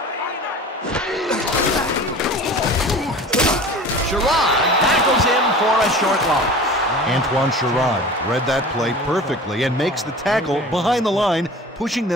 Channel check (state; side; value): normal; both; correlation 0.39